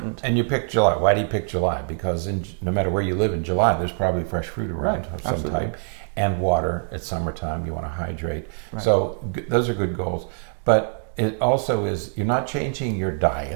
And you picked July. Why do you pick July? Because no matter where you live in July, there's probably fresh fruit around of some type. And water. It's summertime, you want to hydrate. Right. So those are good goals. But it also is, you're not changing your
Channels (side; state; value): left; silent; digital silence